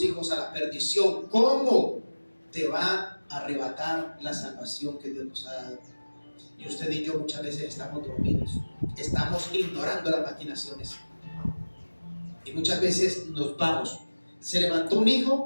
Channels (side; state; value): both; inverted; correlation -1.00